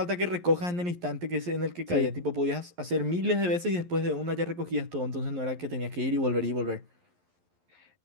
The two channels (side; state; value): left; late; 11 ms